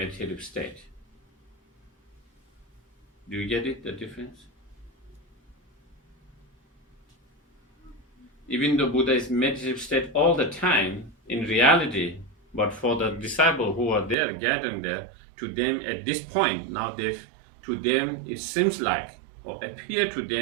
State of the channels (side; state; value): left; drops out; at 14.2 s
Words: state. Do you get it, the difference? Even though Buddha is in meditative state all the time, in reality, but for the disciples who are there, gathering there, to them at this point, now to them it seems like, or appear to